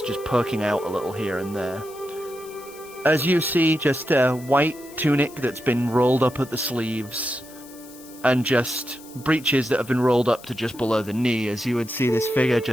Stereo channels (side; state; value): left; noise; hiss, 20 dB below the sound